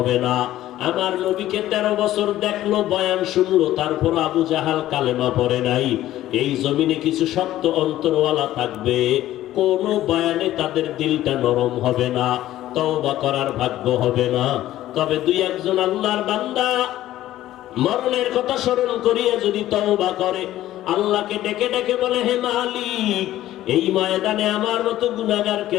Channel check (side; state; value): right; quieter; 14.1 dB